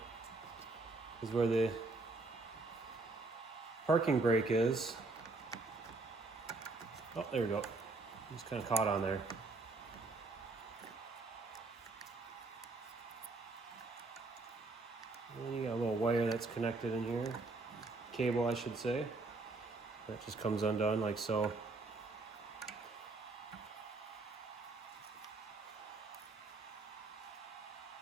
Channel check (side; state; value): left; quieter; 3.4 dB